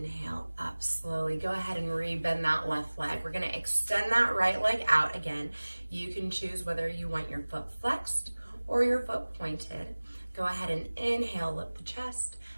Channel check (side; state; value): both; inverted; correlation -1.00